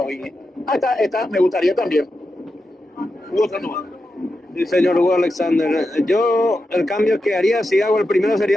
Está, me gustaría también. Hugo Sandoval. Sí, señor Hugo Alexander. Yo, el cambio que haría, si hago el primero,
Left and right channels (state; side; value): normal; both; correlation 0.89